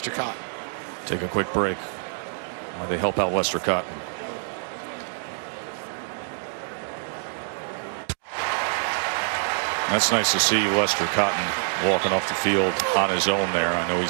Cotton. Take a quick break while they help out Lester Cotton. That's nice to see Lester Cotton walking off the field on his own there. I know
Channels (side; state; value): left; silent; digital silence